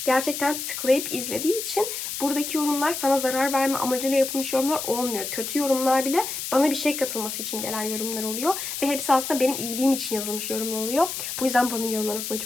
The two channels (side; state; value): left; noise; hiss, 5 dB below the sound